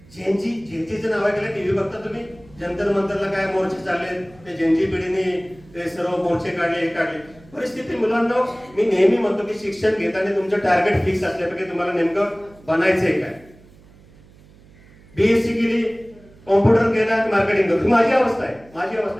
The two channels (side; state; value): right; noise; hum, 25 dB below the sound